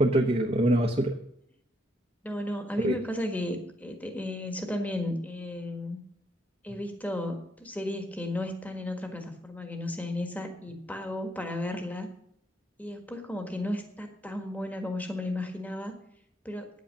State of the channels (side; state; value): both; normal; correlation 0.74